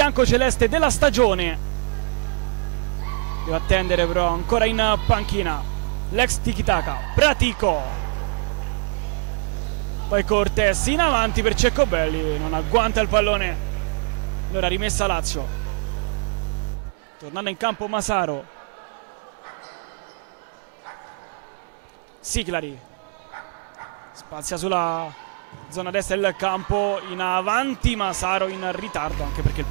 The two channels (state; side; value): silent; left; digital silence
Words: della stagione. Deve attendere però ancora in panchina l'ex tiki-taka Pratico, poi Cortés in avanti per Ceccobelli, non agguanta il pallone, allora rimessa Lazio. Tornando in campo Masaro, Siclari spazia sulla zona destra del campo, in avanti Masaro in ritardo, anche perché il